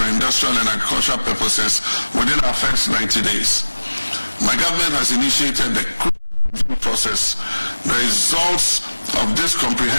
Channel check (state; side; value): inverted; both; correlation -1.00